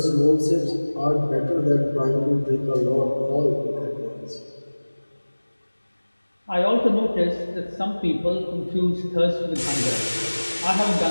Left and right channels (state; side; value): inverted; both; correlation -1.00